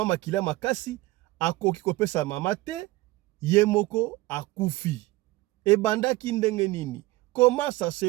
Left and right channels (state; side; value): quieter; left; 19.6 dB